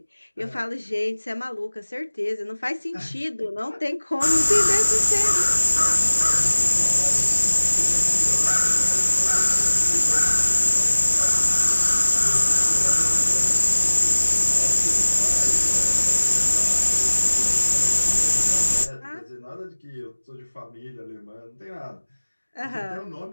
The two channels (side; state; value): both; inverted; correlation -1.00